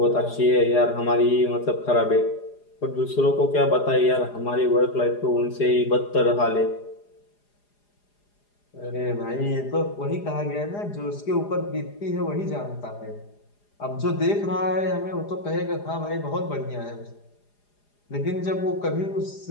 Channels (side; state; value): right; late; 4.9 ms